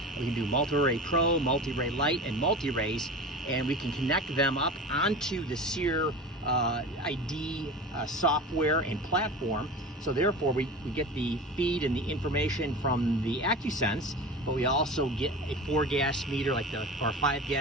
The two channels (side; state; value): both; normal; correlation 0.32